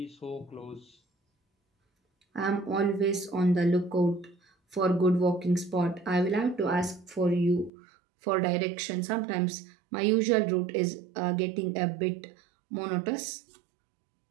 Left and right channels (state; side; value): drops out; left; at 7.7 s